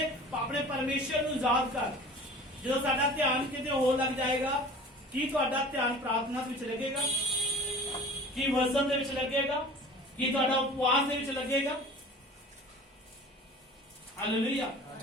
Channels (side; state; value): both; normal; correlation 0.42